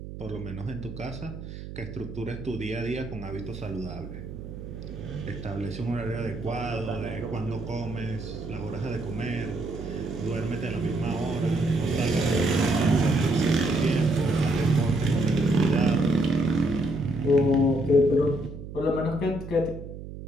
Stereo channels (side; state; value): right; noise; hum, 11 dB below the sound